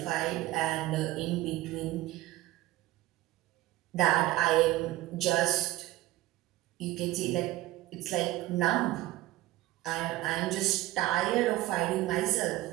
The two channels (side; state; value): left; quieter; 16.5 dB